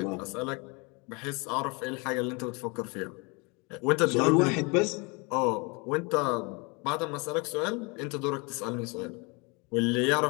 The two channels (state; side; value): quieter; right; 30.0 dB